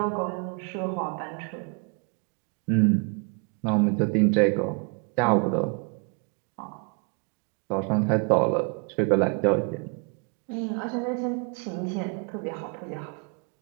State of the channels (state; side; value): quieter; left; 34.5 dB